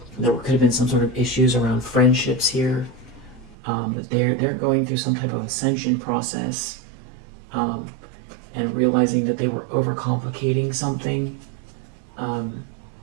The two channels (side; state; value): left; drops out; at 3.6 s